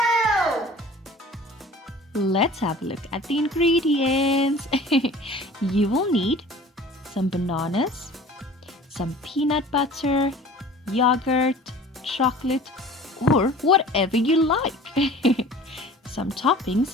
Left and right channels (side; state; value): both; normal; correlation 0.44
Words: Let's have a look at the ingredients. You will need some bananas, some peanut butter, yogurt, chocolate, or whatever you like. Some